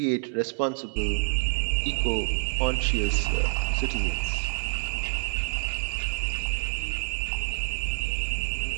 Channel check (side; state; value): left; silent; 59 dB below the other